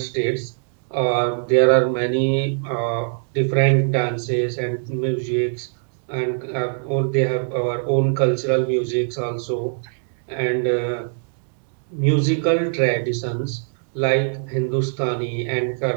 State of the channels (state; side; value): silent; left; 64 dB below the other